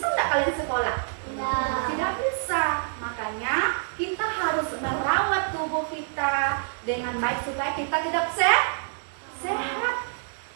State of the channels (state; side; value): silent; left; digital silence